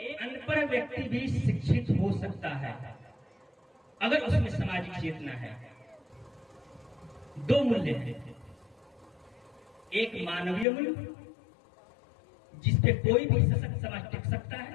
अनपढ़ व्यक्ति भी शिक्षित हो सकता है अगर उसमें सामाजिक चेतना है। दो मूल्य हैं, एक मानवीय मूल्य जिसपे कोई भी सशक्त समाज टिक सकता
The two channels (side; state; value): right; drops out; at 10.7 s